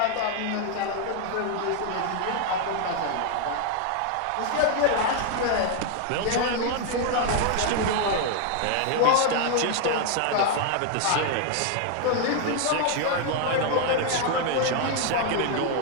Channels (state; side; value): different; both; correlation 0.00